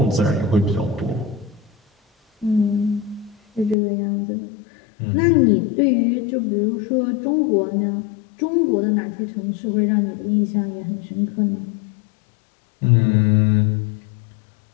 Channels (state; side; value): drops out; right; at 3.8 s